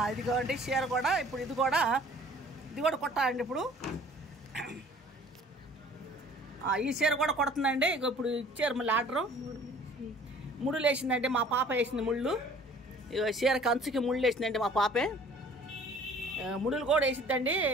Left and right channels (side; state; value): both; normal; correlation 0.51